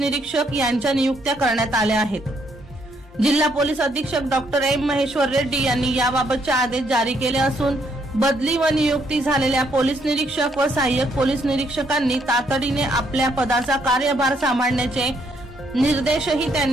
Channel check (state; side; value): normal; both; correlation 0.72